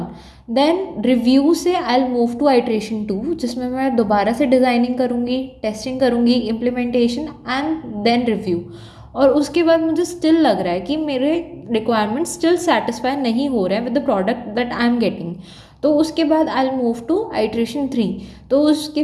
देन रिव्यू से I will move to iteration 2, जिसमें मैं दोबारा से डिज़ाइनिंग करूँगी, टेस्टिंग करूँगी, इम्प्लीमेंटेशन एंड देन रिव्यू। और उसके बाद मुझे स्टिल लग रहा है कि मेरे रिक्वायरमेंट्स स्टिल सेटिस्फाई नहीं हो रहे हैं with the product that I am getting. तो उसके बाद I will move to iteration 3। तो उसके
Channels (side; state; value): both; identical; correlation 1.00